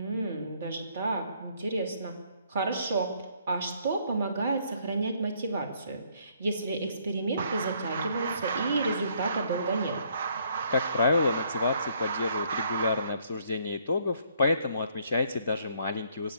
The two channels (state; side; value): inverted; both; correlation -0.66